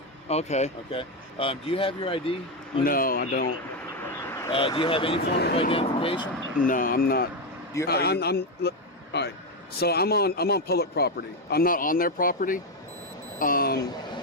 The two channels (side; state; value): both; normal; correlation 0.08